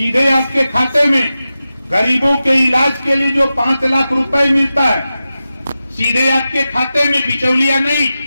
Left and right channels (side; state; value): both; inverted; correlation -0.93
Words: आपके खाते में। गरीबों के इलाज के लिए जो 5 लाख रुपए मिलता है, सीधे आपके खाते में, बिचौलिया नहीं।